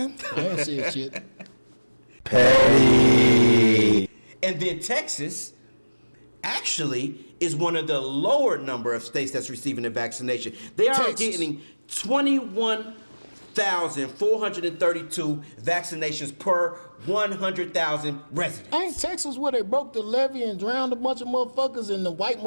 That's it, shit. Petty. And then Texas actually is one of the lower number of states that's receiving the vaccination. They are getting 21,432 vaccinations per 100,000 residents. Ain't Texas where they broke the levee and drowned a bunch of motherfuckers and the white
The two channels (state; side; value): inverted; both; correlation -1.00